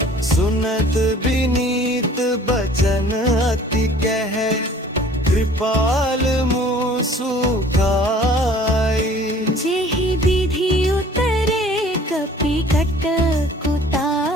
सुनत विनीत बचन अति कह, कृपाल मुँह सुखाई। जेहि विधि उतरे कपि कट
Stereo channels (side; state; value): both; normal; correlation 0.51